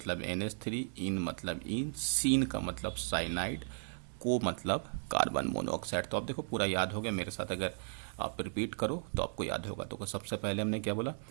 NH3, इन मतलब इन, सीन का मतलब साइनाइड, को मतलब कार्बन मोनोऑक्साइड। तो आप देखो पूरा याद हो गया मेरे साथ, अगर आप रिपीट करो तो आपको याद होगा। तो सबसे पहले हमने क्या बोला,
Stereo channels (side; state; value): left; silent; 54 dB below the other